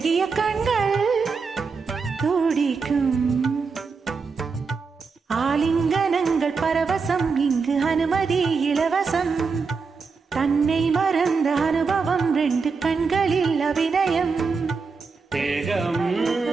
கண்கள் துடிக்கும், ஆலிங்கனங்கள் பரவசம், இங்கு அனுமதி இலவசம். தன்னை மறந்த அனுபவம், 2 கண்களில் அபிநயம். தேகம்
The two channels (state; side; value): quieter; left; 4.9 dB